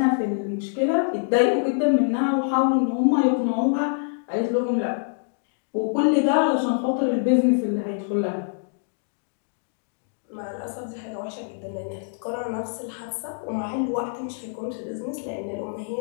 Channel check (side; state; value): right; silent; digital silence